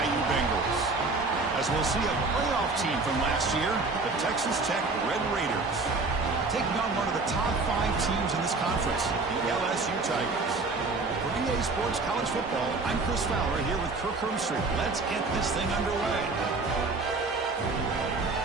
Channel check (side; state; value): left; quieter; 3.7 dB